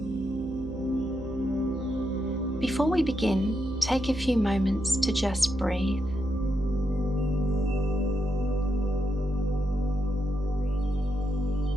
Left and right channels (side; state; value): right; noise; hum, 12 dB below the sound